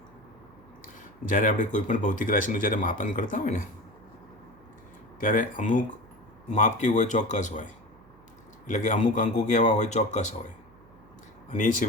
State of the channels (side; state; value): right; noise; hum, 27 dB below the sound